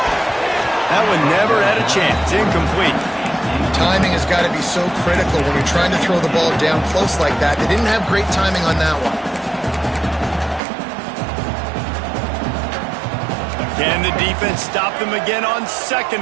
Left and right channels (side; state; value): left; drops out; at 10.6 s